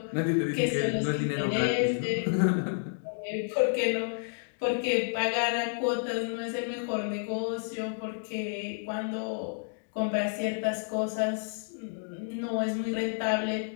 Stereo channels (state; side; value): silent; right; digital silence